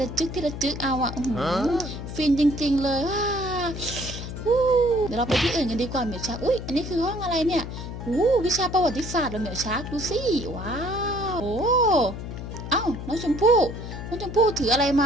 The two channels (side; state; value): left; noise; hum, 8 dB below the sound